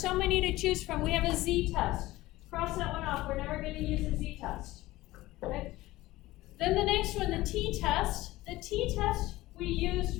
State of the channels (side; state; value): right; quieter; 17.9 dB